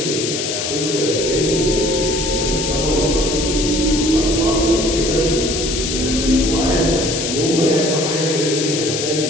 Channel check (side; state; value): left; noise; hiss, 3 dB below the sound